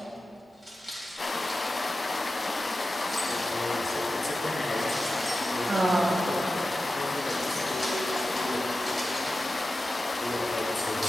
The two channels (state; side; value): normal; both; correlation 0.93